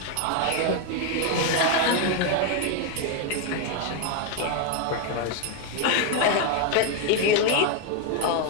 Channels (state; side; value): different; both; correlation 0.01